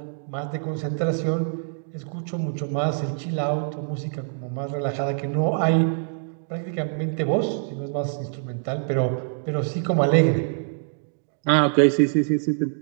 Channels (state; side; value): silent; left; digital silence